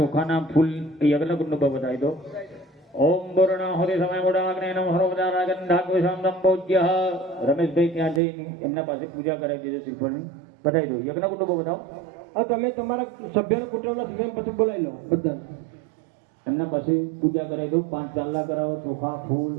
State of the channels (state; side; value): drops out; left; at 8.2 s